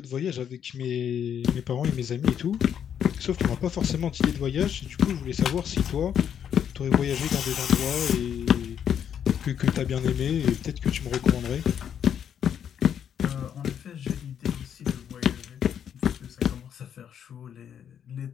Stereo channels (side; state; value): right; quieter; 8.8 dB